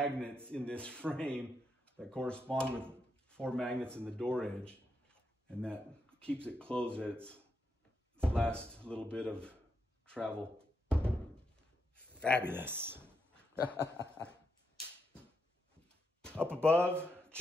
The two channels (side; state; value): both; normal; correlation 0.82